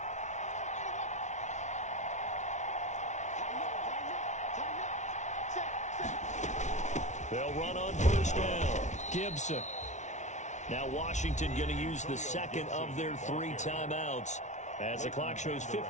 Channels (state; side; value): late; right; 0.34 ms